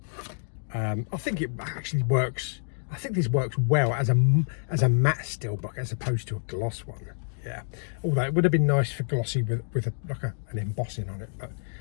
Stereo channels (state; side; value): silent; right; digital silence